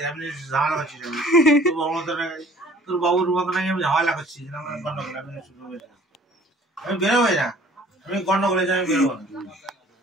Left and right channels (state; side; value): normal; both; correlation 0.53